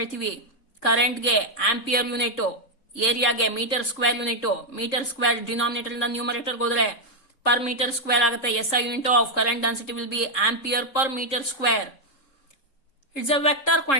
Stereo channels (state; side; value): late; right; 3.7 ms